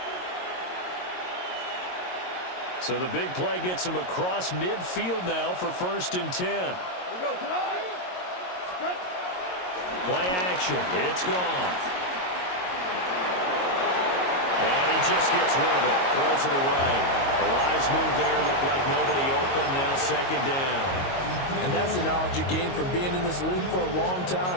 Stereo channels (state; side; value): late; right; 22 ms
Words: So the big play gets him across midfield now for 1st and 10. We go tonight. Play action. It's gone. And he just gets rid of it. Throws it away. The wise move there. Looked like nobody open. Now 2nd down. And that's the knowledge you gain from being in this league for a long